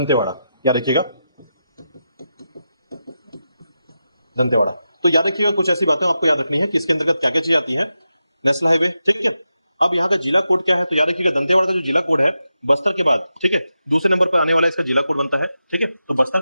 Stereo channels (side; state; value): both; inverted; correlation -0.89